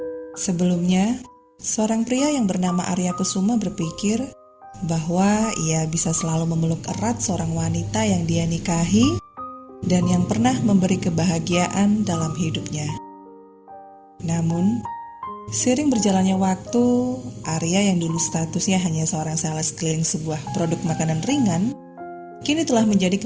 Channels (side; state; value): both; identical; correlation 1.00